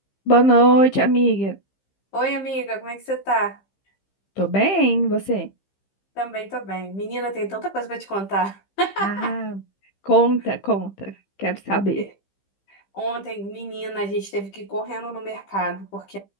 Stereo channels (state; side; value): late; right; 15 ms